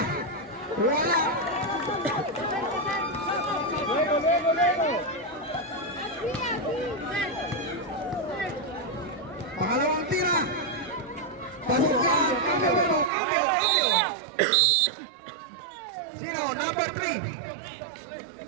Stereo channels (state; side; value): drops out; left; at 13.1 s